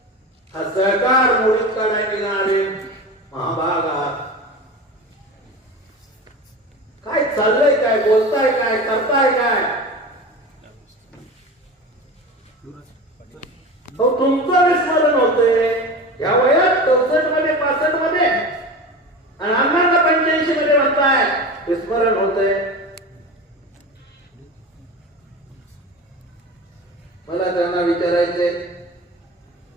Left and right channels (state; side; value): normal; both; correlation 0.30